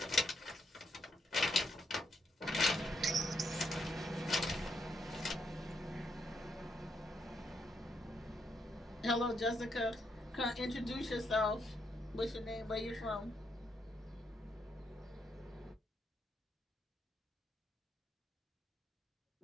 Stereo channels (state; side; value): normal; both; correlation 0.78